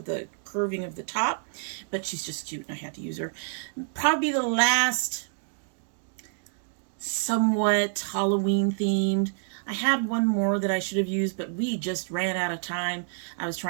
the curving of the top. But she's just cute and I had to use her. Probably the last somewhat Halloween themed. I had one more that I should have used, but we just ran out of time. I was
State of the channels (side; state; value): left; silent; digital silence